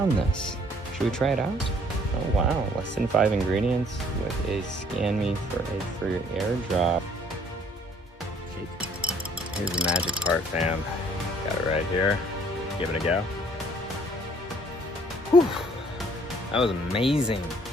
this. Should we try it out? Oh, wow. Less than 5 ingredients with a scan me for a free airdrop. Here's the magic part, fam. Got it right here. Give it a go. Whew. That was amazing.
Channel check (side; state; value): both; normal; correlation 0.60